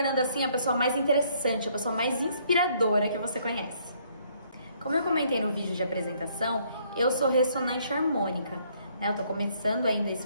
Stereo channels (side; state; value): both; inverted; correlation -0.66